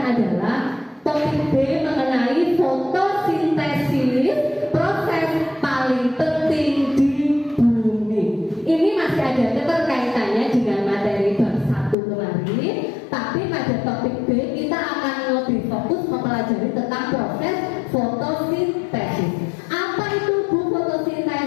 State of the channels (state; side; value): drops out; right; at 12.0 s